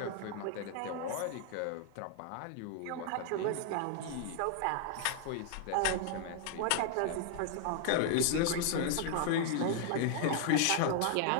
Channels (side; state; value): both; different; correlation 0.00